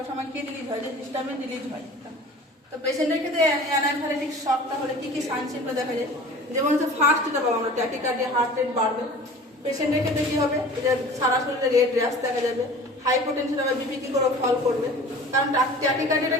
সময় কি রিলিজ হয়, যে হিস্টামিন রিলিজ হয়। তো পেশেন্টের ক্ষেত্রে অ্যানাফাইলেটিক শকটা হলে কি কি সাইন সিম্পটম দেখা যায়, যেমন হচ্ছে ফার্স্ট যেটা পাবো আমরা ট্যাকিকার্ডিয়া, হার্ট রেট বাড়বে। পেশেন্টের ক্ষেত্রে কি হবে, যে সারা শরীরে রেড র্যাশ দেখা যাবে, হাইপোটেনশন হবে, বিপি কি করে ফল করবে। কারণ ট্যাকিকার্ডিয়াটা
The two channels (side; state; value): both; normal; correlation 0.43